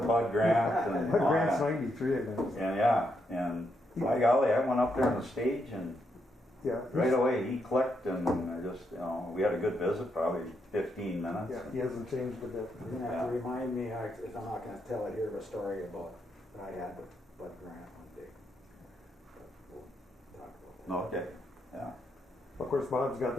Bud Grant. And Bud Grant's 93, I think. And by golly, I went up there on the stage and Yeah. Right away, he clicked and just, we had a good visit, probably 15 minutes. Yeah, he hasn't changed a bit. You're gonna have to remind me, if I'm not gonna tell it here, of a story about, that I had with Bud Grant one day. But we'll talk about that. Okay, yeah. Of course, Bob's got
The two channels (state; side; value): normal; both; correlation 0.80